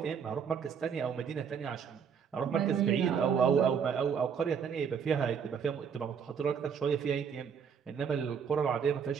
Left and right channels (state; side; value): quieter; left; 7.0 dB